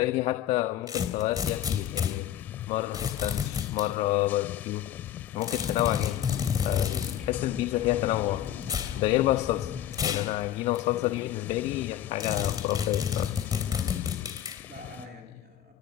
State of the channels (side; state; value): right; quieter; 11.5 dB